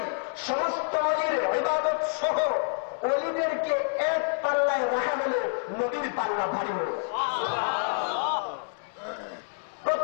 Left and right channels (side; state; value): right; silent; 59 dB below the other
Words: সমস্ত ওলির ইবাদত সহ ওলিদেরকে এক পাল্লায় রাখা হলে নবীর পাল্লা ভারী হল।